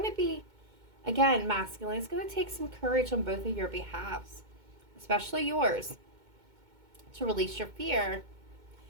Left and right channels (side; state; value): left; late; 2.2 ms